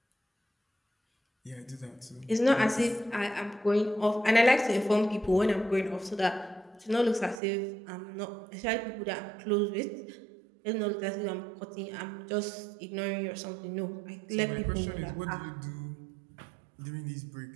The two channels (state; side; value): drops out; left; at 7.4 s